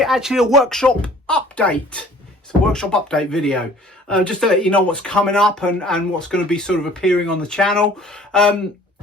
a workshop update. It's a workshop update video, just to let you know what's coming up and what's going to be sort of appearing on the channel.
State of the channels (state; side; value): normal; both; correlation 0.51